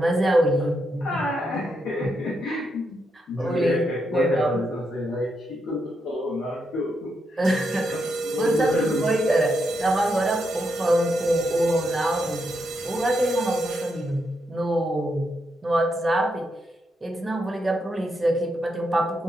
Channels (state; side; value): normal; both; correlation 0.82